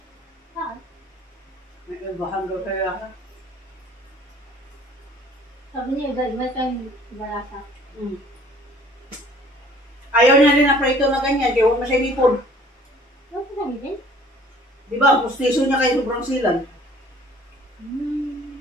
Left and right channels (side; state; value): both; normal; correlation 0.54